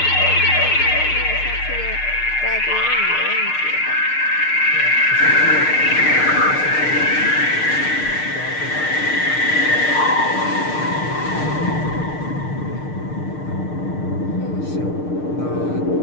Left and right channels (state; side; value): late; right; 6.6 ms